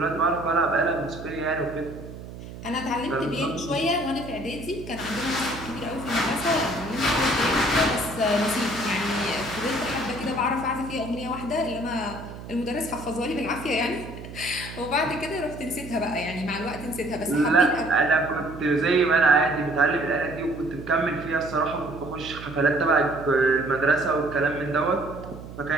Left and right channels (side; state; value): right; noise; hum, 13 dB below the sound